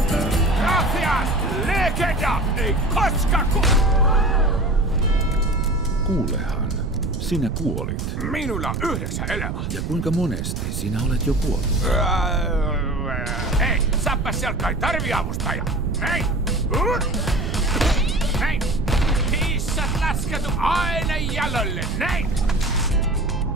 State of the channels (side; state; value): right; noise; rumble, 3 dB below the sound